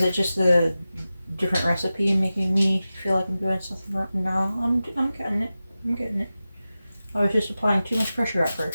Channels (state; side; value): inverted; both; correlation -0.95